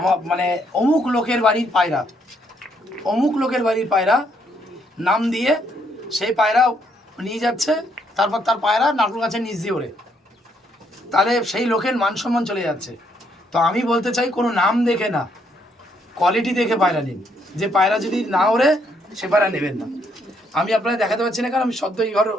মানে অমুক লোকের বাড়ির পায়রা, অমুক লোকের বাড়ির পায়রা নাম দিয়ে সেই পায়রা নিয়ে যাচ্ছে, তারপর তার পায়রা নারকেল গাছের নিচ দিয়ে ওড়ে, তাহলে সেই লোকের মান সম্মান চলে যাচ্ছে। তো আমি বলতে চাই, কোনো নাম দেখে না, কোয়ালিটি দেখে পায়রা নিন। যে পায়রা যদি না ওড়ে সে পায়রা নেবেন না। আমি আপনাদের দেখাতে পারছি না কারণ আমি সদ্য এই ঘর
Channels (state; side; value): normal; both; correlation 0.72